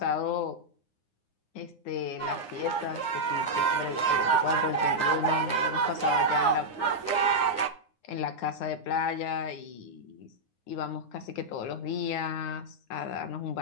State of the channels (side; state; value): right; late; 9.7 ms